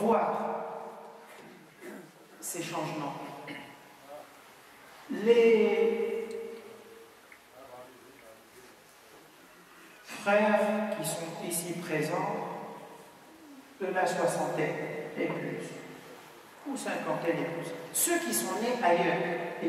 ces changements. Les frères qui sont ici présents, de la soixantaine et plus, ou cinquantaine et plus, ceux qui sont nés ailleurs et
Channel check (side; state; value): both; identical; correlation 1.00